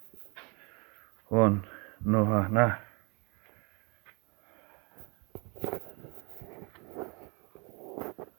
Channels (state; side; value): quieter; left; 31.2 dB